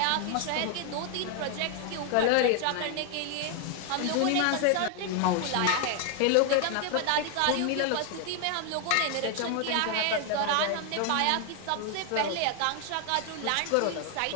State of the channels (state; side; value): different; both; correlation 0.00